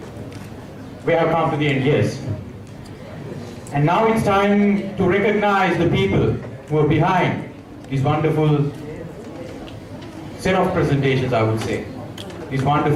we have come to the end, yes. And now it's time to recognize the people who are behind this wonderful set of presentations, I would say, this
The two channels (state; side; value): identical; both; correlation 1.00